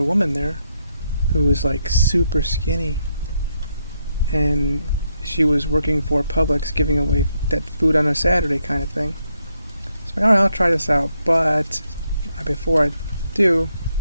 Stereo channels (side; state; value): both; inverted; correlation -0.79